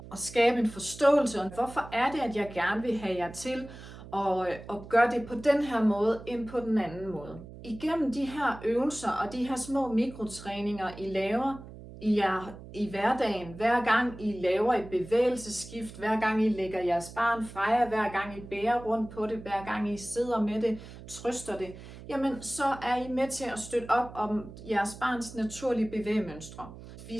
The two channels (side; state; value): right; noise; hum, 15 dB below the sound